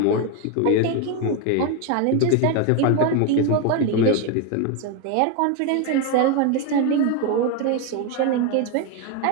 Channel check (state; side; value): different; both; correlation 0.01